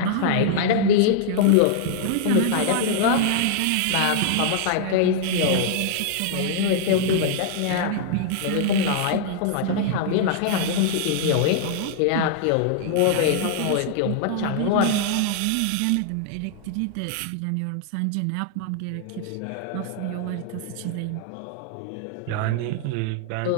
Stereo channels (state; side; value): different; both; correlation -0.01